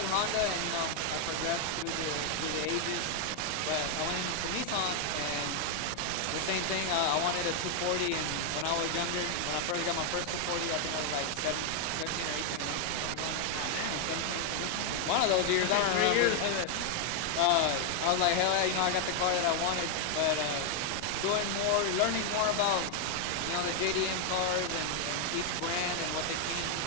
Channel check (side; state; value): both; different; correlation 0.00